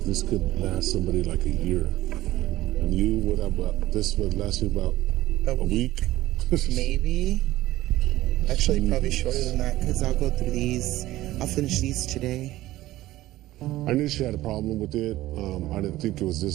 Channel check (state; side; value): quieter; left; 16.2 dB